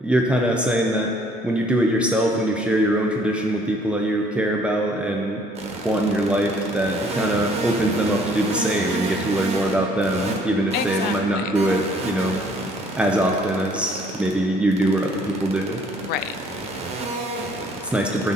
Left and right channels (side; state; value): both; normal; correlation 0.60